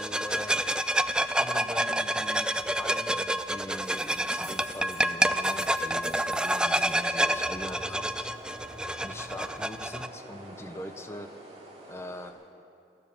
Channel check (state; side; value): normal; both; correlation 0.74